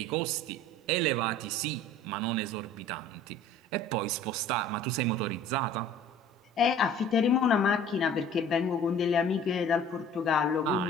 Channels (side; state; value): both; normal; correlation 0.48